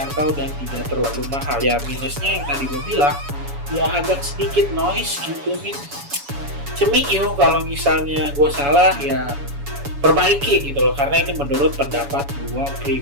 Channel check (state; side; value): late; left; 7.1 ms